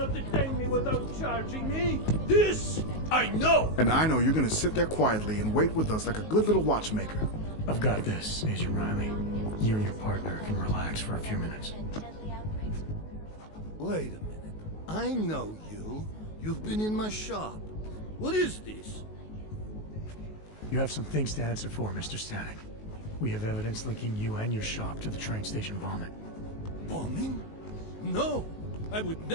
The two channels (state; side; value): late; right; 19 ms